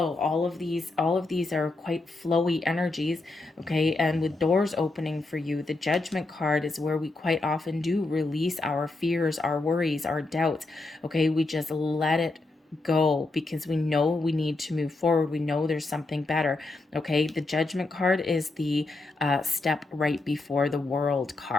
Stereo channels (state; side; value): quieter; right; 3.2 dB